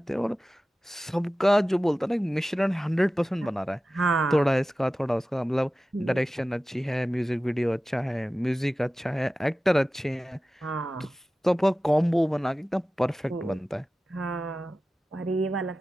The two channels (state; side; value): normal; both; correlation 0.95